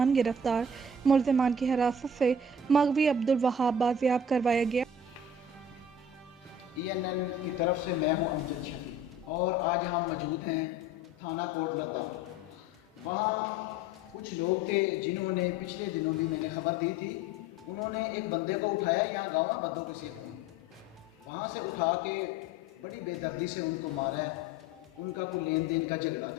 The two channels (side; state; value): both; normal; correlation 0.45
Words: गिरफ्तार। मुल्ज़िमान की हिरासत से मगवी अब्दुल वहाब बाजियाब करवाया गया। ENN की तरफ से मैं हूं अमजद शफी और आज हम मौजूद हैं थाना कोट लद्दा। वहाँ कुछ लोग थे जिन्होंने पिछले दिनों भी मैंने खबर दी थी। उन्होंने एक बंदे को उठाया, यहाँ गाँव में बद्दों के सेब में, वहाँ से उठा के बड़ी बेदर्दी से उनको मारा है। उनका कोई लेन देन का झगड़ा